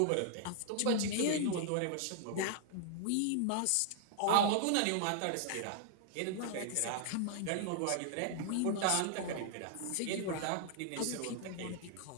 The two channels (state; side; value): different; both; correlation 0.00